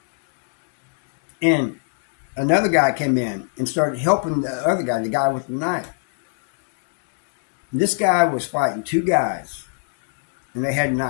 And another guy came in and started helping the other guy, the guy with the knife. And this guy was fighting two guys, and they had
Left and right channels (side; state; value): right; silent; digital silence